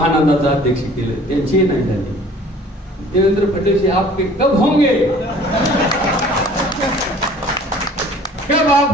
अध्यक्ष केलं, त्यांची नाही झाली. देवेंद्र फडणवीस आपके कब होंगे? कब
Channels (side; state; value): both; normal; correlation 0.50